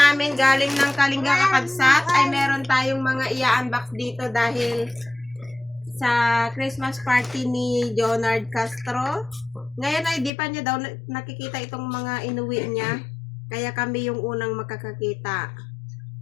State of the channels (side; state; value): right; drops out; at 10.3 s